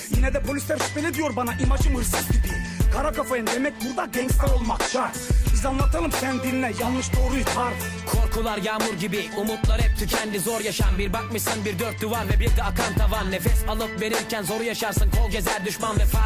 Yine de polisler şüpheli diyor bana, imajım hırsız gibi. Kara kafayım demek burada gangster olmak şart. Biz anlatalım sen dinle, yanlış doğruyu tart. Korkular yağmur gibi, umutlar hep tükendi. Zor yaşam, bir bakmışsın bir dört duvar ve bir de akan tavan. Nefes alıp verirken zoru yaşarsın, kol gezer düşman. Ve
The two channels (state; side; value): identical; both; correlation 1.00